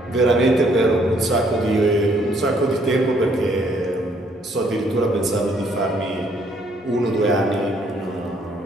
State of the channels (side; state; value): both; normal; correlation 0.66